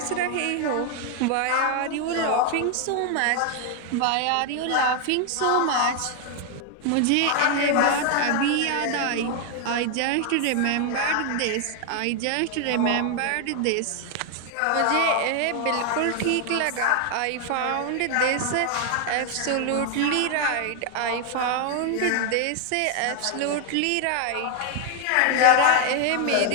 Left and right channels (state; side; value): different; both; correlation 0.00